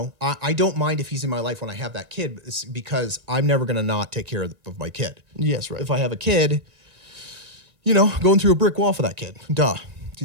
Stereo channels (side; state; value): left; late; 1.7 ms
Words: don't mind if he's in my life when I have that kid, because I'm never going to not take care of my kid. Yes, right. If I have a kid, going through a brick wall for that kid. Duh.